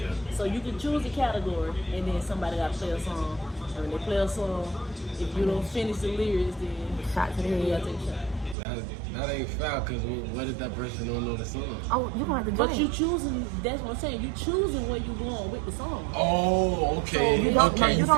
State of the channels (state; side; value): drops out; left; at 8.6 s